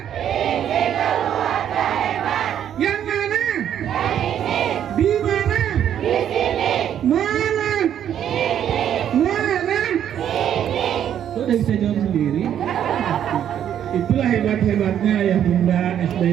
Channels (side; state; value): left; quieter; 9.9 dB